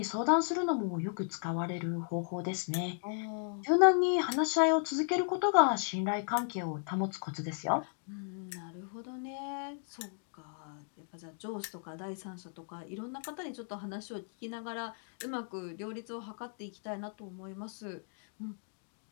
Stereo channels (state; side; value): silent; right; 54 dB below the other